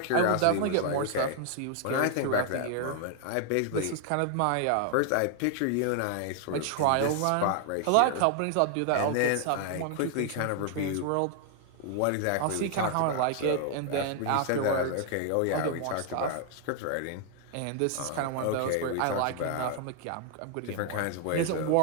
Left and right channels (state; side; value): different; both; correlation 0.00